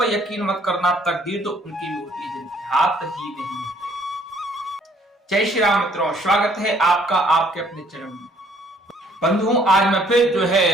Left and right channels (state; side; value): normal; both; correlation 0.62